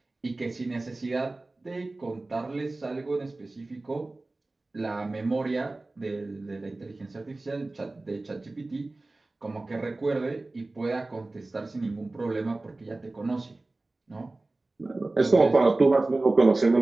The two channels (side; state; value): left; quieter; 3.1 dB